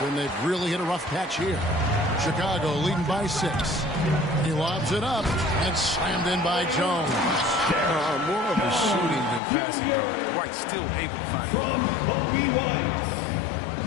and they've really hit a rough patch here. Chicago leading by 6. He lobs it up and slammed in by Jones. More of a shooting than passing guard. White still able to find it.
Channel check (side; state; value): right; drops out; at 9.4 s